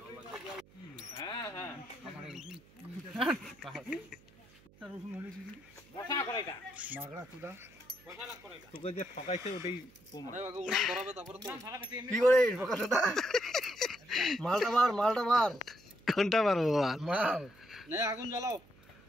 তোকে যে ঠকাইছে ওটাই কি করে মালটা বার কোনটা মারবো মাল আগুন জ্বালাও।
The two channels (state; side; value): noise; right; hum, 26 dB below the sound